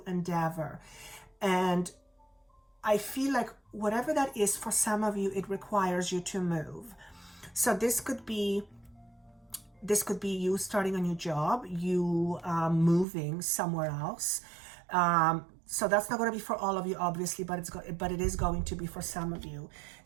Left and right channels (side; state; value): left; drops out; at 13.1 s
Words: endeavor. And I feel like whatever that is, for some of you, it requires you to move. So this could be you starting a new job, you moving somewhere else. So that's not going to be for all of you, obviously, but it is going to be for some of you.